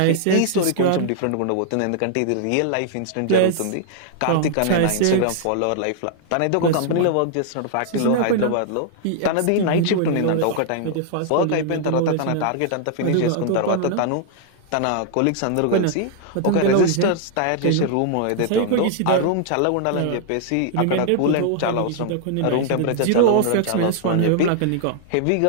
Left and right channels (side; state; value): both; different; correlation -0.01